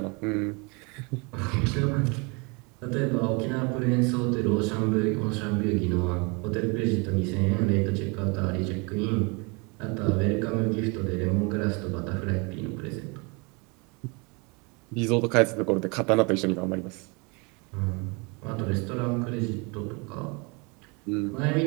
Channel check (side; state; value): left; quieter; 30.4 dB